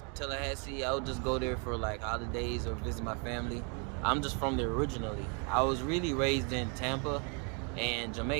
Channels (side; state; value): left; quieter; 36.8 dB